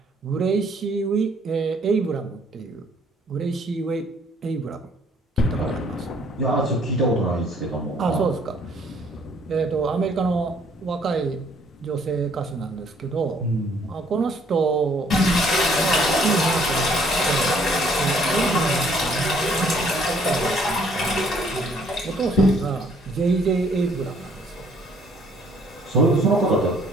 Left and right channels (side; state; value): both; normal; correlation 0.63